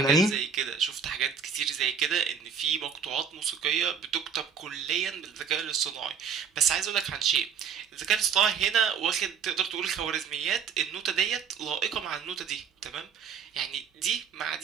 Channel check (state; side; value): quieter; left; 6.7 dB